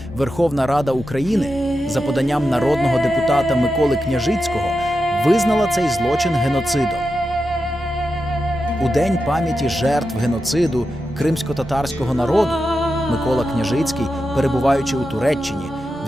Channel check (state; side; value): normal; both; correlation 0.89